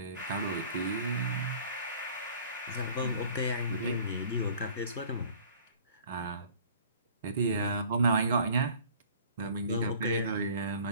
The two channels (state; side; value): inverted; both; correlation -0.50